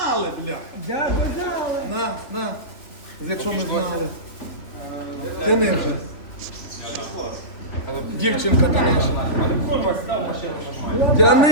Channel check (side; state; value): right; late; 3.5 ms